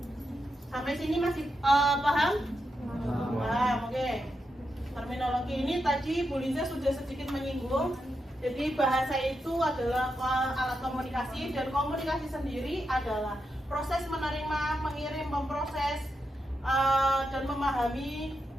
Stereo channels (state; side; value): normal; both; correlation 0.86